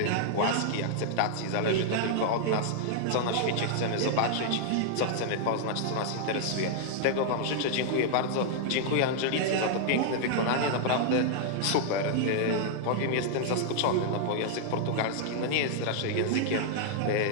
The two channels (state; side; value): different; both; correlation -0.01